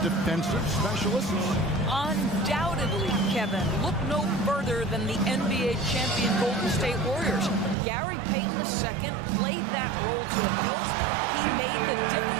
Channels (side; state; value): left; drops out; at 7.8 s